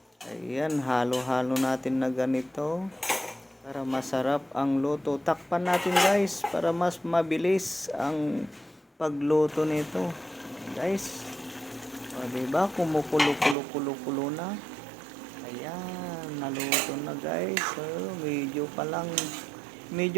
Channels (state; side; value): drops out; left; at 13.6 s